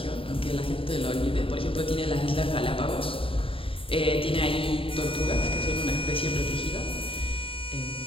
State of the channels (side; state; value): right; late; 0.26 ms